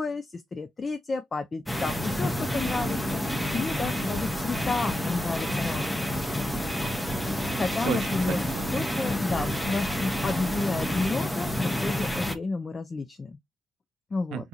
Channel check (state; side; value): normal; both; correlation 0.89